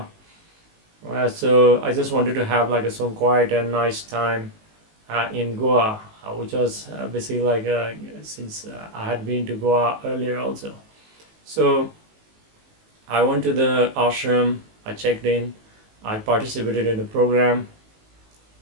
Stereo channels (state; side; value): late; left; 19 ms